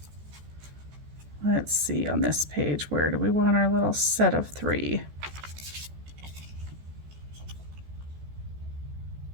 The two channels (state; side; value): late; left; 14 ms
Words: let's see on this page, where do we want our little set of 3?